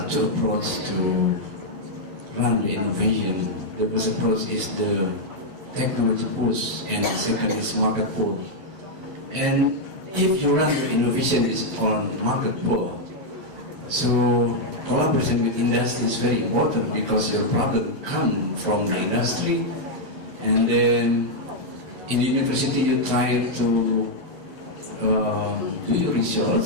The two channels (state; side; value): late; left; 11 ms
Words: two approaches to run innovation. The first approach is the technology push, and the second is market pull. And if you run your innovation is on market pull, so collaboration with industry is very important, because your problem come from the industry, and then in the university you try to do your